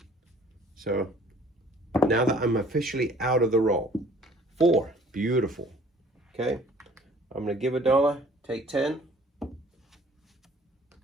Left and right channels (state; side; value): normal; both; correlation 0.54